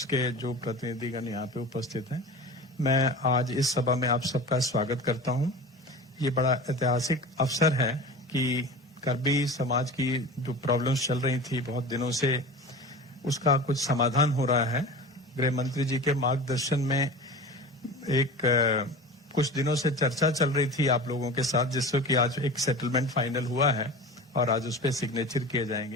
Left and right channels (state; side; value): normal; both; correlation 0.34